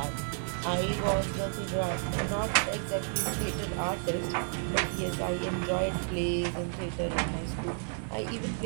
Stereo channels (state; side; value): silent; left; 57 dB below the other